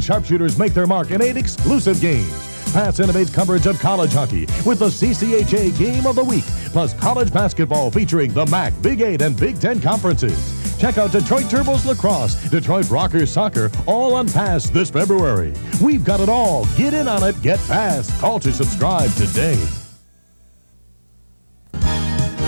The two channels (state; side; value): inverted; both; correlation -1.00